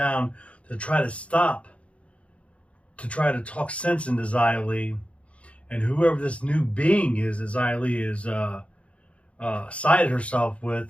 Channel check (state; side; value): late; right; 0.062 ms